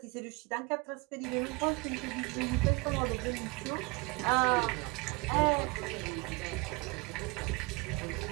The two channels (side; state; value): left; quieter; 26.8 dB